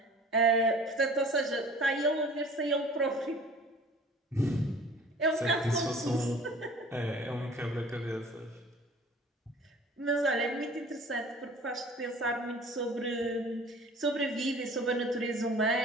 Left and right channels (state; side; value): normal; both; correlation 0.47